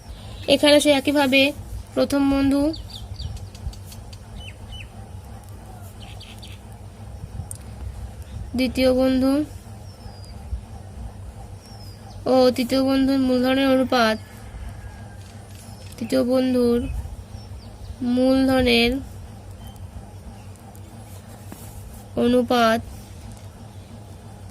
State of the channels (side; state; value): both; identical; correlation 1.00